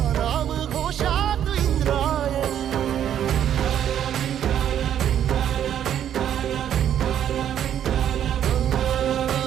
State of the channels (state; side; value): quieter; left; 10.0 dB